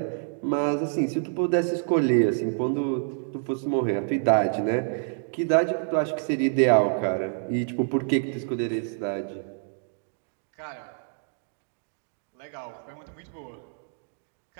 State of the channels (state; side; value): silent; left; digital silence